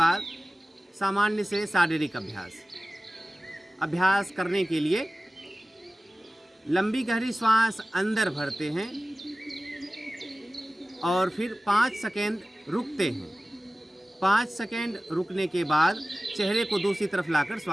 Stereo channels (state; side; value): normal; both; correlation 0.97